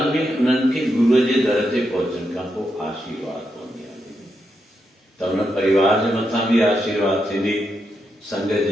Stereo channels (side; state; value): both; normal; correlation 0.83